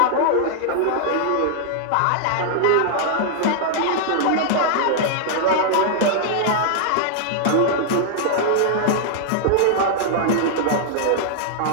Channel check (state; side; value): different; both; correlation -0.01